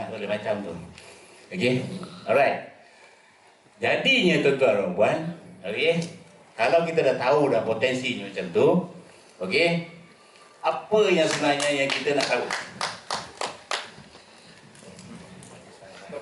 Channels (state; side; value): identical; both; correlation 1.00